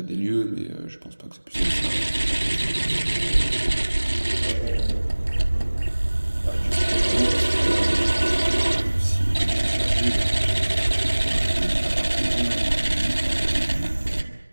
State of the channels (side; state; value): both; inverted; correlation -1.00